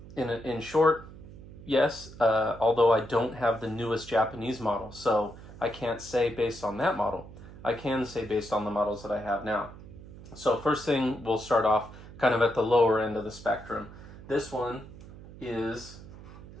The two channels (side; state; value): right; noise; hum, 16 dB below the sound